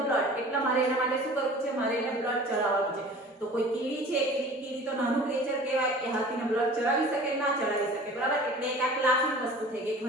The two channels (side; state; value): both; normal; correlation 0.43